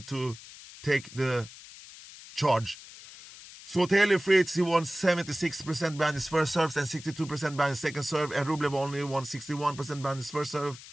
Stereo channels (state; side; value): noise; left; hiss, 17 dB below the sound